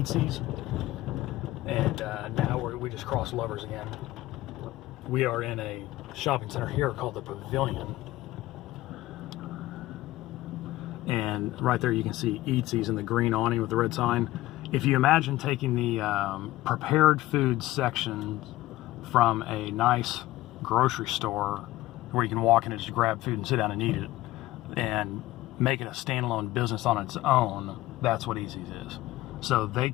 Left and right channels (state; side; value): quieter; right; 16.9 dB